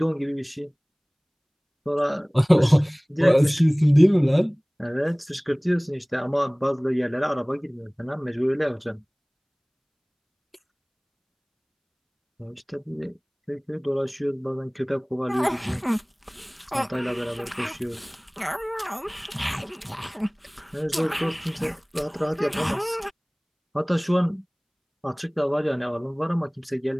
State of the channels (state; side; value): identical; both; correlation 1.00